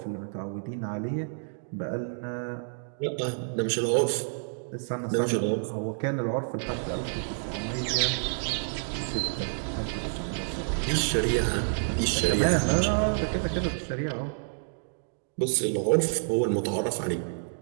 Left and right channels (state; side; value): silent; left; digital silence